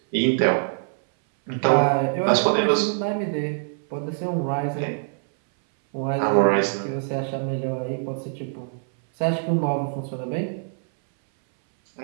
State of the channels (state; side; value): silent; left; 61 dB below the other